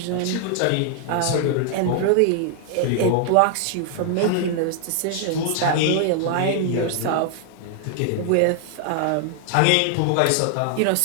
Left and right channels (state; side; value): different; both; correlation 0.00